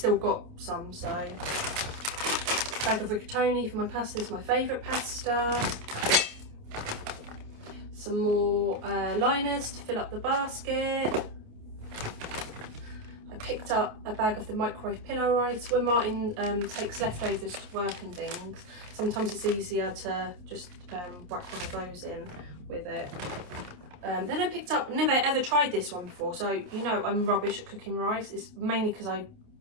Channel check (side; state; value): left; late; 28 ms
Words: got some, so. Bag of rigatoni for my pasta. This is my favourite pasta. Some more liners to fill up the basket. I picked up a bag of the microwave pillow rice. When Martin takes leftovers to work and things, sometimes it's easier to just whack one of those in with it. Then I picked up, never ever tried this one before, so you know I'm rubbish at cooking rice. It's mainly because I